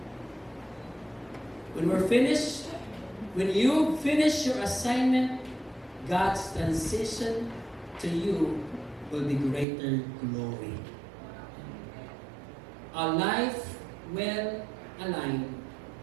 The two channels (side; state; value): left; drops out; at 9.7 s